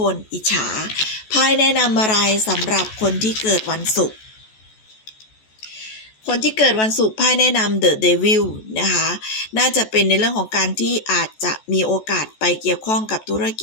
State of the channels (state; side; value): late; right; 14 ms